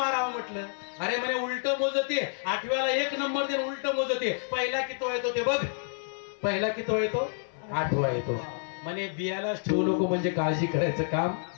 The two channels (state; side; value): silent; right; 59 dB below the other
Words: म्हटलं. अरे म्हणे उलट मोजते, 8व्याला 1 नंबर देऊन उलट मोजते, पहिला किती येतो ते बघ, पहिला किती येतो? 8वा येतो. म्हणे बियालाच ठेवू नको, म्हणजे काळजी करायचं काम